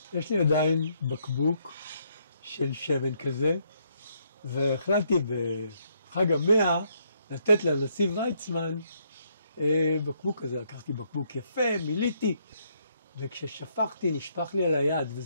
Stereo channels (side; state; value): both; inverted; correlation -0.72